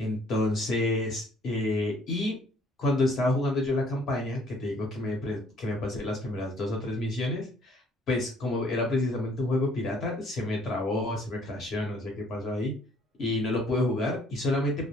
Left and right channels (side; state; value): both; normal; correlation 0.61